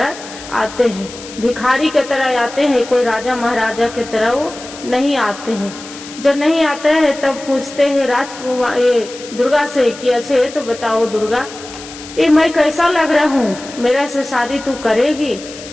आते हैं, भिखारी के तरह आते हैं, कोई राजा महाराजा के तरह वो नहीं आते हैं। जब नहीं आते हैं तब पूछते हैं राजकुमार दुर्गा से कि अच्छे तो बताओ दुर्गा, ये मैं कैसा लग रहा हूँ, मेरे से शादी तू करेगी।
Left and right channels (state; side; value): noise; left; hiss, 15 dB below the sound